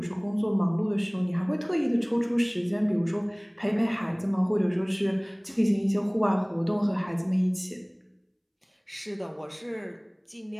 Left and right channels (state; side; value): identical; both; correlation 1.00